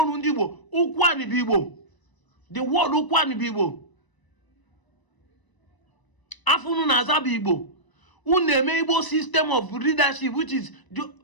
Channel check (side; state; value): right; late; 1.0 ms